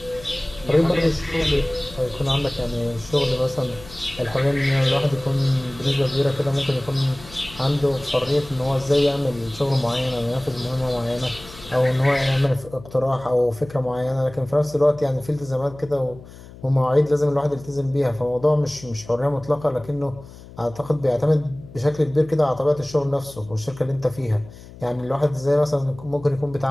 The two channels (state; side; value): noise; left; hum, 18 dB below the sound